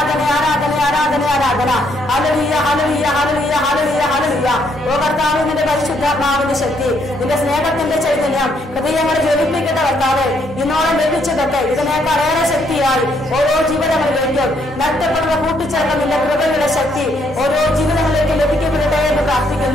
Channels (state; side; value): normal; both; correlation 0.71